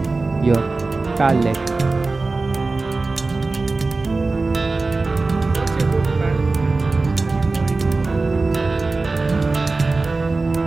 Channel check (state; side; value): quieter; left; 3.6 dB